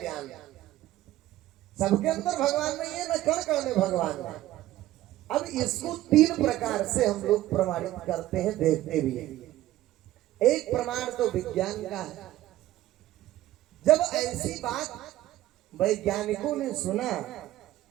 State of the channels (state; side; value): quieter; left; 14.8 dB